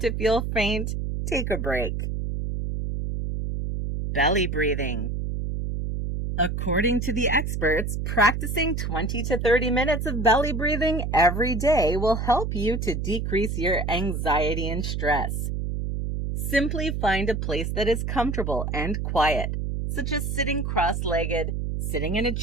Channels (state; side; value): noise; right; hum, 2 dB below the sound